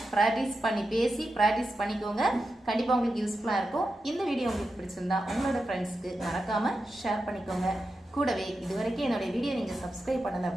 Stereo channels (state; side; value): normal; both; correlation 0.90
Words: ப்ராக்டிஸ் பண்ணி பேசி ப்ராக்டிஸ் பண்ணிக்கோங்க. கண்டிப்பாக உங்களுக்கு யூஸ்ஃபுல்லாக இருக்கும். இந்த வீடியோ உங்களுக்கு பிடிச்சிருந்தா உங்களோட ஃப்ரெண்ட்ஸ்க்கு மறக்காமல் ஷேர் பண்ணிக்கோங்க. கூடவே இது வரைக்கும் என்னுடைய வீடியோ நீங்கள் சப்ஸ்கிரைப் பண்ணலை